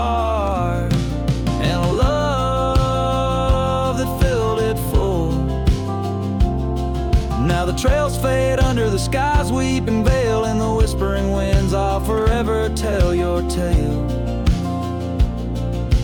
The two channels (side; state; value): both; identical; correlation 1.00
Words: and a love that filled it full. Now the trails fade under the sky's weeping veil, and the whispering winds I'll forever tell your tale.